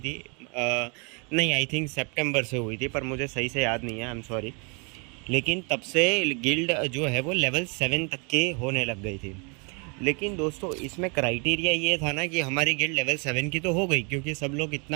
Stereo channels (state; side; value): quieter; left; 34.0 dB